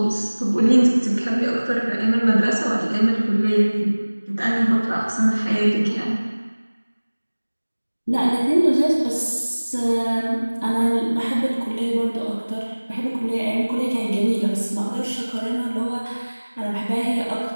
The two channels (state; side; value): inverted; both; correlation -1.00